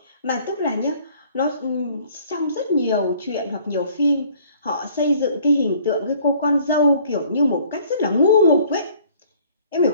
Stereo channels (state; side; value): inverted; both; correlation -0.56